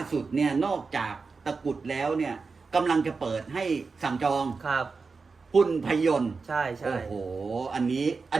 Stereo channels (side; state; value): left; quieter; 4.5 dB